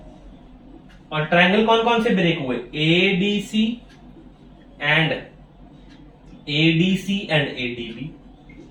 और ट्रायंगल कौन कौन से ब्रेक हुए, ADC एंड ADB।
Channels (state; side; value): identical; both; correlation 1.00